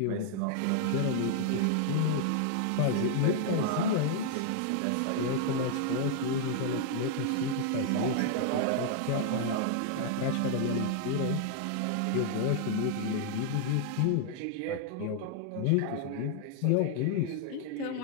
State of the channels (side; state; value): both; different; correlation 0.00